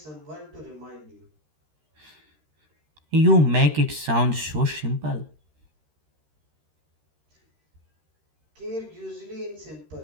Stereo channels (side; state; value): left; late; 13 ms